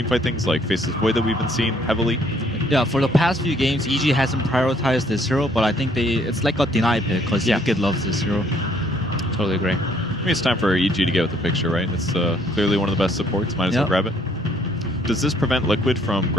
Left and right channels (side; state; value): both; normal; correlation 0.64